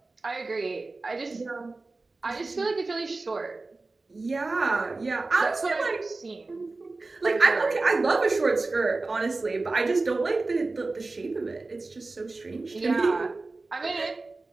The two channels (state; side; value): quieter; left; 3.5 dB